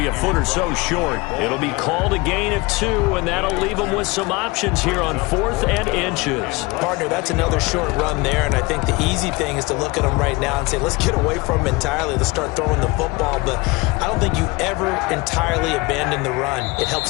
a foot or so short. It'll be called a gain of 2, and that'll leave him with some options here on 4th and inches. Partner, that's another short run there, and I think the easy thing is to look at him right now and say, let's get away from him entirely. Let's start throwing the football, but I don't think you ever entirely abandon the run. It helps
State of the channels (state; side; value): quieter; right; 23.7 dB